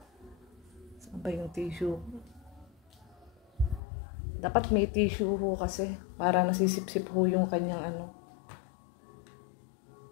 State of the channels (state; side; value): drops out; right; at 3.8 s